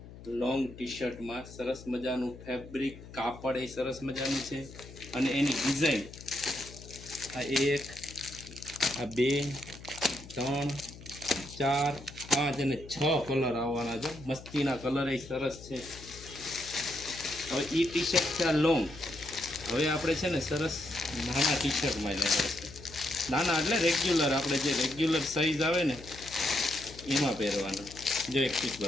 લોંગ ટી શર્ટમાં સરસ મજાનું ફેબ્રિક, કાપડ એ સરસ મજાનું છે. અને એની ડિઝાઇન આ 1, આ 2, 3, 4, 5 અને 6 કલર આવવાના છે. મસ્તીના કલર એ સરસ છે. હવે એ ટી શર્ટ છે આ લોંગ. હવે આપણે છે ને સરસ નાના ટી શર્ટમાં લેવા છે. નાના એટલે રેગ્યુલર, આપણે જે રેગ્યુલર સાઈઝ આવે ને એમાં પહેરવાના. જો એક પીસ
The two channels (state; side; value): noise; left; hum, 16 dB below the sound